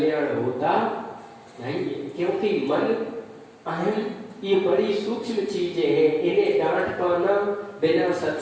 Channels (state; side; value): identical; both; correlation 1.00